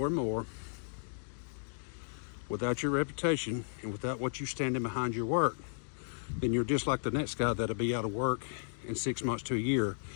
and more, without your reputation and without what you standing behind your work, then you're just like the next guy that'll be out of work in 6 months to a year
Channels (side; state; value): right; silent; digital silence